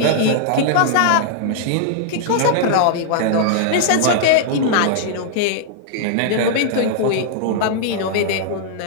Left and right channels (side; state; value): both; different; correlation -0.01